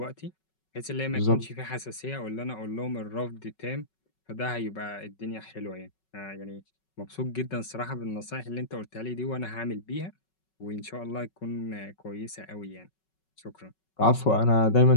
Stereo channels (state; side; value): late; right; 5.4 ms